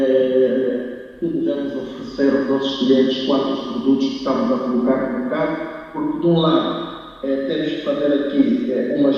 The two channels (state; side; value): identical; both; correlation 1.00